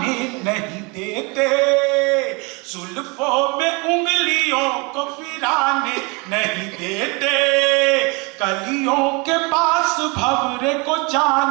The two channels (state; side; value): quieter; left; 29.1 dB